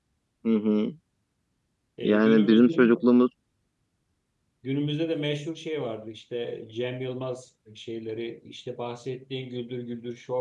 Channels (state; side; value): identical; both; correlation 1.00